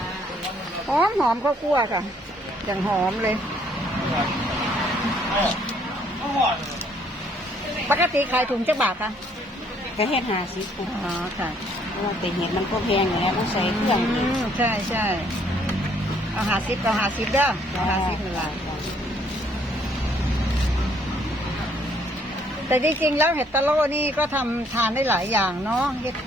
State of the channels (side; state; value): both; normal; correlation 0.65